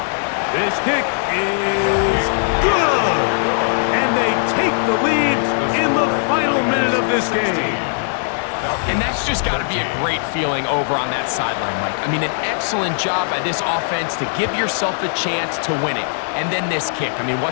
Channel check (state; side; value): silent; right; digital silence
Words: This kick is good! And they take the lead in the final minute of this game. And that's just got to be a great feeling over on that sideline, Mike. I mean, an excellent job by this offense to give yourself a chance to win it. And then this kick. I mean,